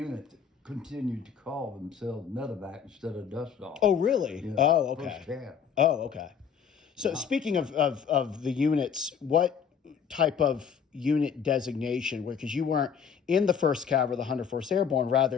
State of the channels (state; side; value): quieter; right; 7.1 dB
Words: that continued to call themselves medevac instead of dust off. Oh, really? Yeah, Oh, okay. First cab. Oh, okay. So speaking of the units, what type of unit designation? Because you weren't in the 1st Cav or the 104th Airborne,